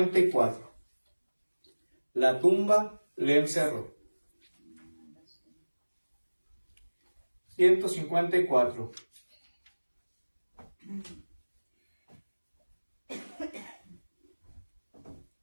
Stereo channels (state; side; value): inverted; both; correlation -1.00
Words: La tumba le encerró. 154.